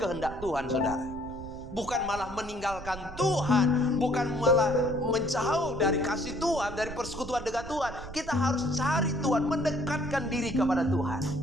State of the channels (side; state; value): right; noise; rumble, 12 dB below the sound